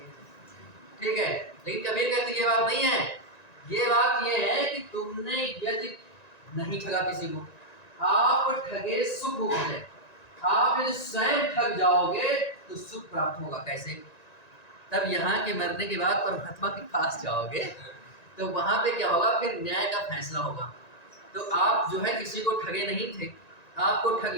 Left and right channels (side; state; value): right; late; 1.9 ms